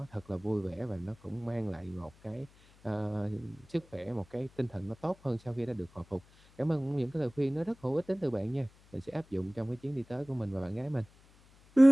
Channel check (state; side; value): noise; left; hum, 27 dB below the sound